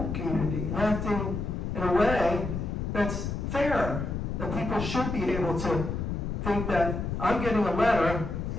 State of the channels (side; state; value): left; noise; rumble, 3 dB below the sound